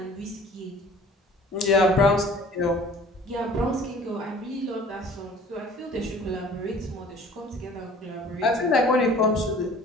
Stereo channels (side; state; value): both; normal; correlation 0.49